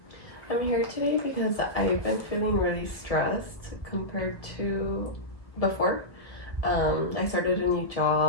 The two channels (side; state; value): right; late; 1.3 ms